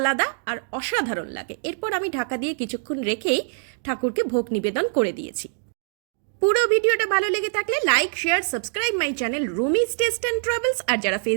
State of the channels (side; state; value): left; silent; digital silence